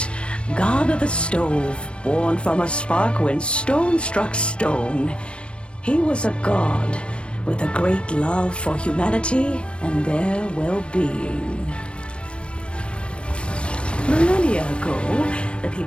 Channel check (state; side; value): late; right; 0.058 ms